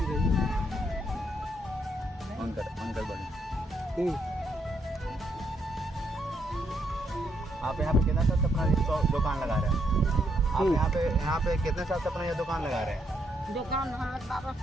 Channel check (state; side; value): normal; both; correlation 0.75